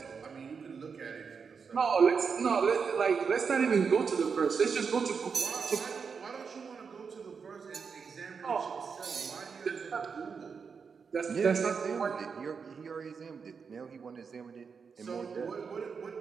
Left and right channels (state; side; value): quieter; left; 5.8 dB